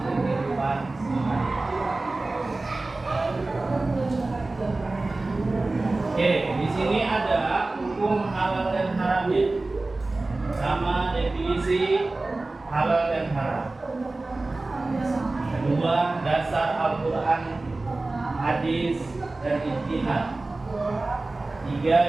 kehidupan sehari-hari. Oke, di sini ada hukum halal dan haramnya, sama definisi halal dan haram. Kedua, dasar Al-Quran, hadis, dan ijtihad.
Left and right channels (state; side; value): quieter; left; 3.1 dB